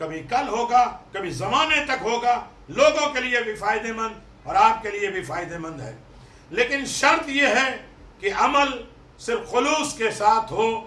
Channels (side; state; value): both; identical; correlation 1.00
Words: کل ہوگا، کبھی زمانے تک ہوگا، لوگوں کے لیے بھی فائدہ مند اور آپ کے لیے بھی فائدہ مند ہے۔ لیکن شرط یہ ہے کہ عمل صرف خلوص کے ساتھ ہو